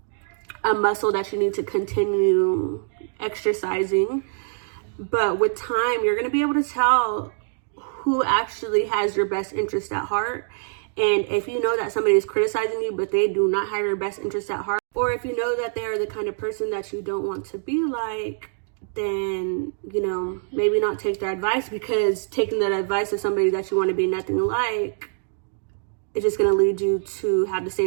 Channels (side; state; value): left; silent; digital silence